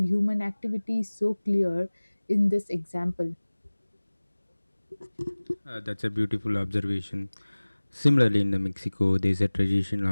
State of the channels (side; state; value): both; inverted; correlation -1.00